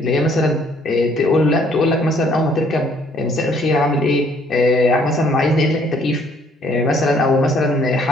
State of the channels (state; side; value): normal; both; correlation 0.63